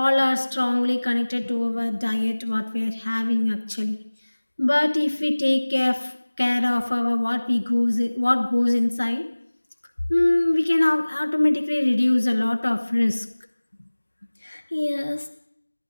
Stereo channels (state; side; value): inverted; both; correlation -1.00